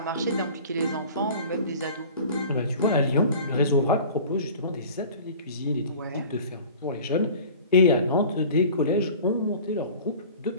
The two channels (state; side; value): inverted; both; correlation -0.42